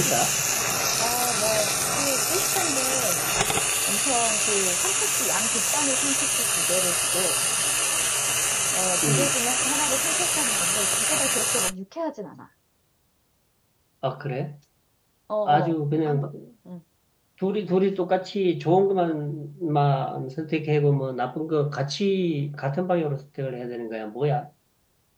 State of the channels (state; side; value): identical; both; correlation 1.00